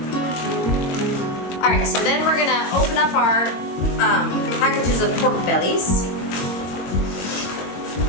Alright, so then we're gonna open up our packages of pork bellies.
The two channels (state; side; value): late; right; 22 ms